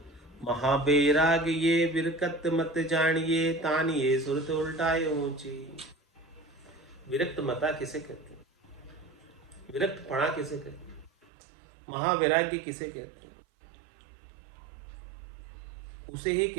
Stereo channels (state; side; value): drops out; left; at 11.2 s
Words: महाबैराग ये विरकत मत जानिए, तानिए सुरत उल्टाए ऊंची। विरक्त मता किसे कहते हैं? विरक्त पणा किसे कहते हैं? महावैराग्य किसे कहते हैं? उसे ही